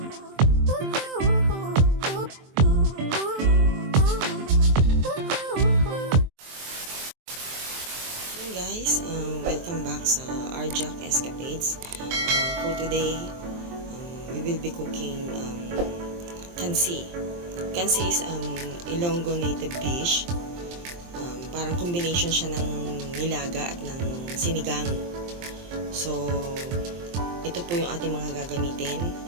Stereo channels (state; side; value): late; left; 23 ms